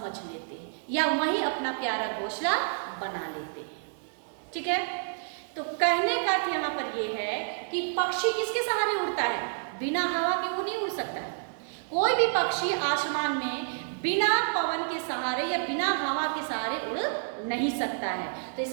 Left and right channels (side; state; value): left; silent; digital silence